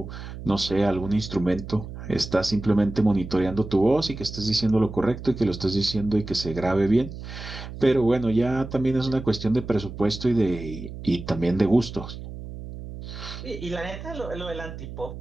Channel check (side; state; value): right; noise; hum, 11 dB below the sound